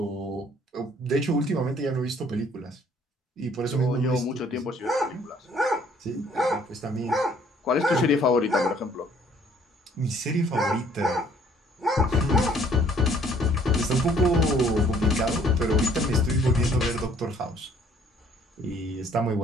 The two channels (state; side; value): normal; both; correlation 0.60